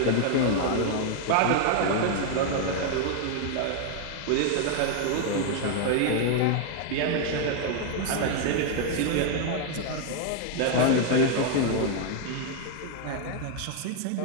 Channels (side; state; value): both; different; correlation 0.00